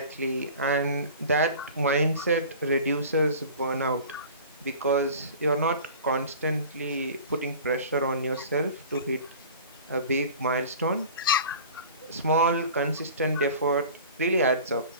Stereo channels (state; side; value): inverted; both; correlation -0.41